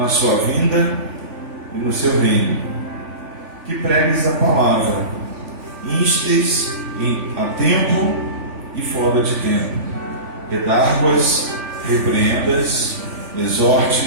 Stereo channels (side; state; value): left; late; 3.4 ms